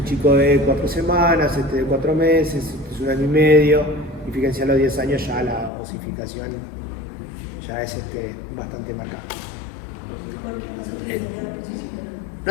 chico de 4 semanas, este de 4 meses, este es 1 año y medio, y fíjense a los 10 años ya la osificación ya es bastante marcada.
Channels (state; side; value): drops out; right; at 5.7 s